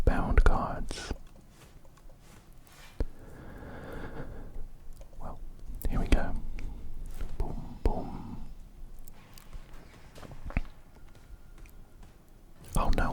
bound cards. Well, here we go. Boom, boom. Oh,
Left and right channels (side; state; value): both; identical; correlation 1.00